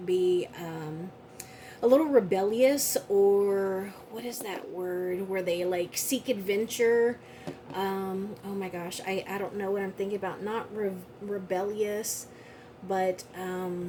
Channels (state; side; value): identical; both; correlation 1.00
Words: be a little rebellious, or what is that word where they like seek adventure. Oh my gosh, I don't know what I'm thinking about. Not rebellious, but I